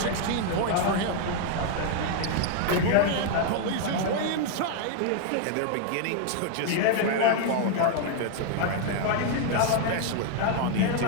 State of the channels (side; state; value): both; different; correlation 0.00